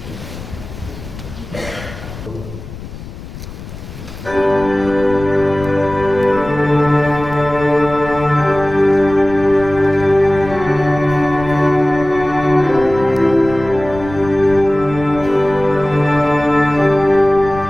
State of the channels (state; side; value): noise; left; rumble, 13 dB below the sound